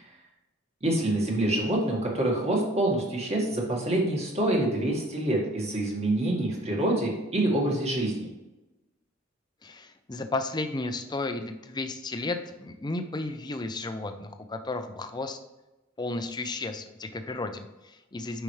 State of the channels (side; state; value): both; normal; correlation 0.52